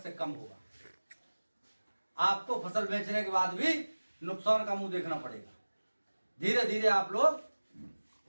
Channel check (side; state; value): both; inverted; correlation -1.00